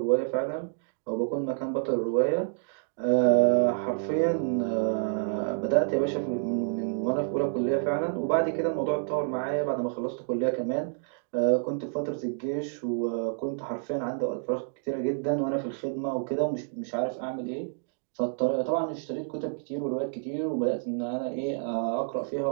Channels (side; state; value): left; silent; digital silence